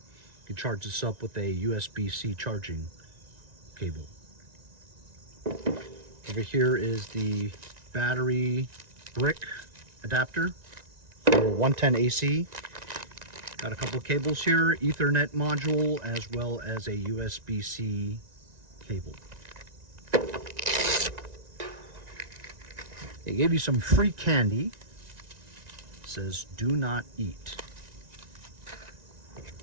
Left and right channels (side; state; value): left; late; 1.9 ms